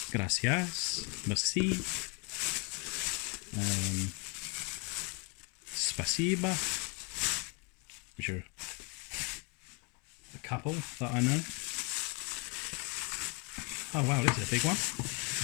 Gracias, merci, spasiba, which are a couple that I know. Oh wow, this is a big one.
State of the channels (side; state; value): right; quieter; 33.5 dB